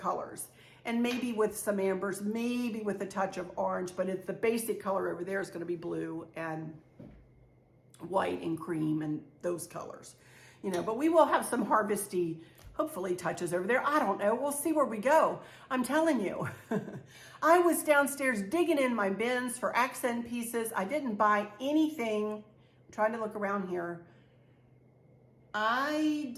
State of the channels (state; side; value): identical; both; correlation 1.00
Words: And maybe with some ambers, maybe with a touch of orange, but it's the basic color over there is going to be blue and white and cream and those colors. You know, but we will have some harvesty, hopefully, touches over there. I don't know. We'll see where we go. I'm telling you. I was downstairs digging in my bins for accent pieces. I didn't buy anything. I'm trying to look around here. I